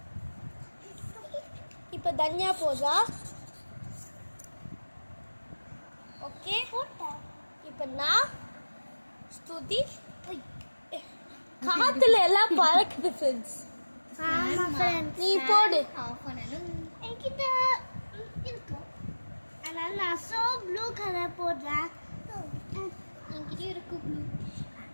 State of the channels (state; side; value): inverted; both; correlation -1.00